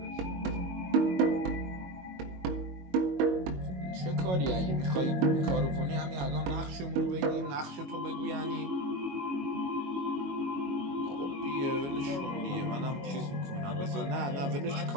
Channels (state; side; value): late; left; 22 ms